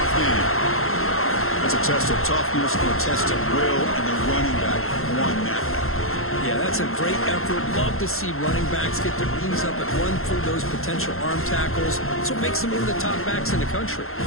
game. That's a test of toughness and a test of will, and the running back won that battle. Yeah, that's a great effort. Love to see running backs get their knees up and run through those potential arm tackles. That's what makes them one of the top backs in the country.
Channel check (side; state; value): right; late; 0.62 ms